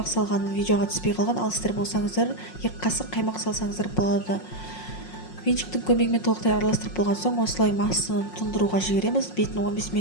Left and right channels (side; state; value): right; late; 5.5 ms